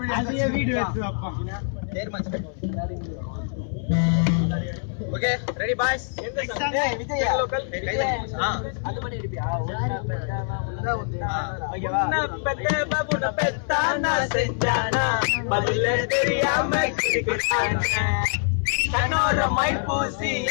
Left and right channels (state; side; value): silent; right; 62 dB below the other